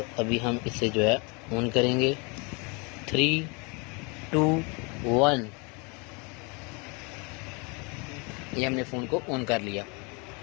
अभी हम इसे जो है ऑन करेंगे। 3, 2, 1। ये हमने फ़ोन को ऑन कर लिया।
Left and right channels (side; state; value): right; quieter; 30.9 dB